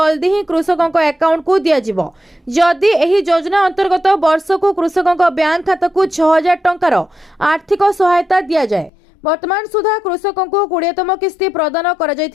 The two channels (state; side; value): drops out; right; at 8.9 s